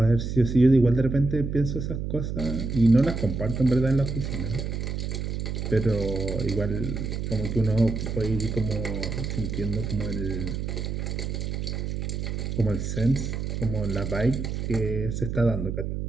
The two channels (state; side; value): noise; right; hum, 3 dB below the sound